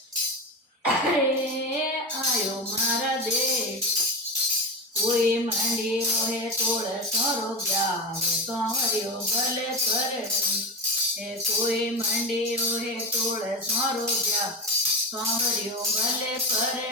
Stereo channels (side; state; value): both; normal; correlation 0.20